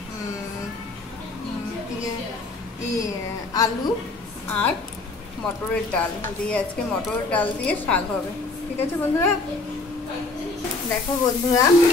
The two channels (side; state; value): right; quieter; 3.5 dB